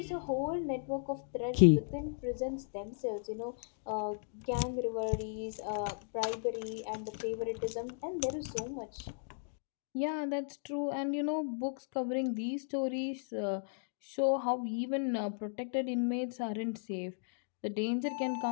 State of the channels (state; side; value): silent; right; digital silence